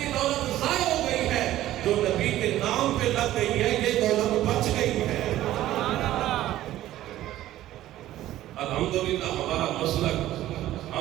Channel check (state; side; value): quieter; left; 14.1 dB